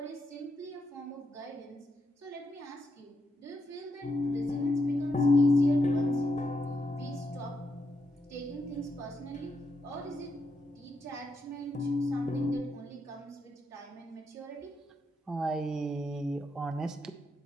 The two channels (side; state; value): both; normal; correlation 0.81